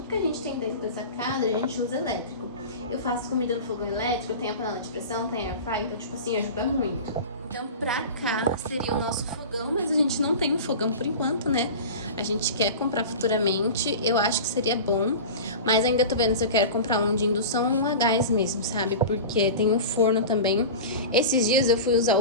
que a gente tem dentro dessa casa, a gente usa elétrico. Eu faço comida no fogão elétrico, eu tenho a panela de pressão, tenho air fry, então, tipo assim, ajuda muito. Então, pra cá seria o nosso fogão, mas a gente não tem um fogão por enquanto, né? A gente quer comprar futuramente, eu acho que seria bom, mas ainda tô vendo se eu quero comprar um de indução ou um a gás mesmo, sabe? Porque tem um forno também. Esses dias eu fui usar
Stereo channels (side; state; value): both; inverted; correlation -0.32